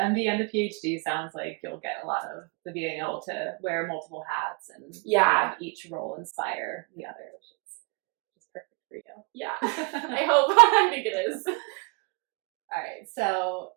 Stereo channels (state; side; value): quieter; left; 32.5 dB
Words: and the PhD sounds like you'll get a lot of the being able to wear multiple hats and have each role inspire the other, which is perfect for you. Yeah. I hope. I think it is. All right. So